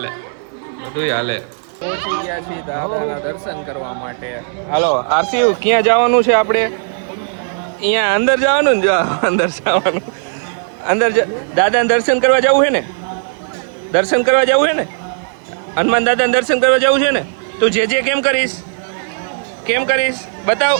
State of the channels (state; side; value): silent; left; digital silence